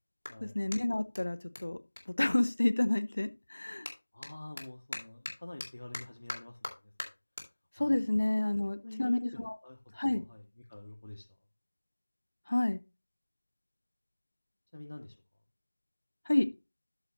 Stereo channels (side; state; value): both; inverted; correlation -1.00